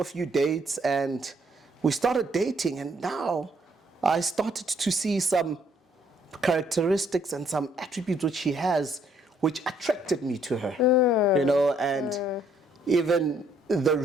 a few dates and we started dating, and now I started to see some characteristics and some attributes which she has which attracted me to her. You know, and even the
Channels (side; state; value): both; normal; correlation 0.67